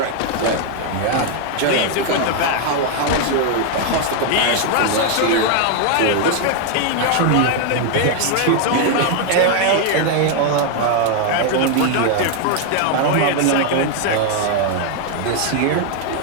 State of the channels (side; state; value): both; different; correlation 0.00